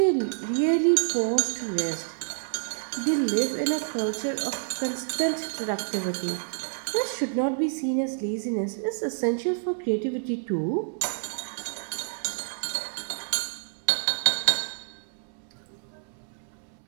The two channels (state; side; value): silent; left; 59 dB below the other